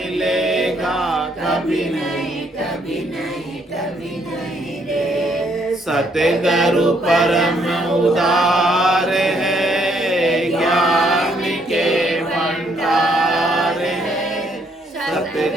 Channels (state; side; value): normal; both; correlation 0.70